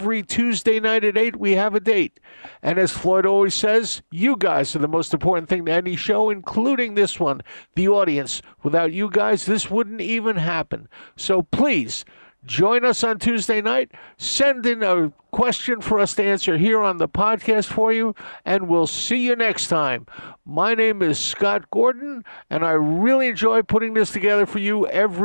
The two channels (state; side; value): inverted; both; correlation -1.00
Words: Tuesday night at 8, we have a date. And as Floyd always says, you guys are the most important thing to any show, including this one, the audience. Without you guys, this wouldn't even happen. So please, Join us on Tuesday night. Send in a question for us to answer here on the podcast for you, and we'll see you next time. My name is Scott Gordon, and I really enjoy putting this together for you